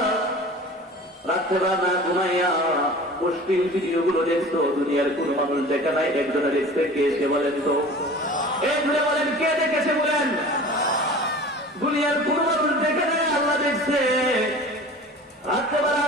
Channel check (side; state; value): both; normal; correlation 0.40